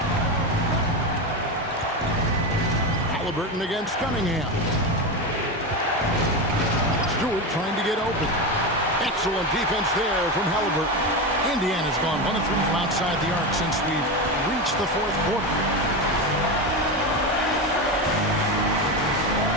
Halliburton against Cunningham. Stewart trying to get open. Excellent defense there from Halliburton. Indiana's gone 1 of 3 from outside the arc since we've reached the fourth quarter.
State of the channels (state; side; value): normal; both; correlation 0.17